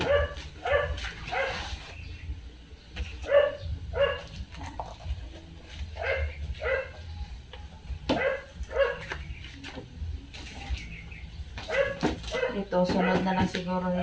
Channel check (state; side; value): identical; both; correlation 1.00